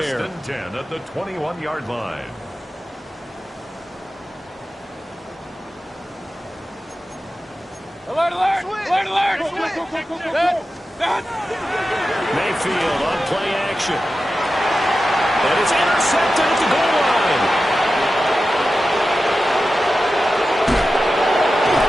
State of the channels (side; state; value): both; normal; correlation 0.93